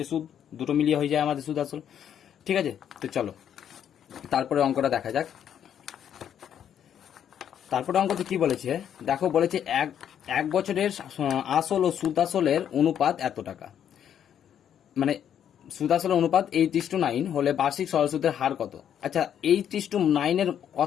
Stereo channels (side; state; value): right; quieter; 9.3 dB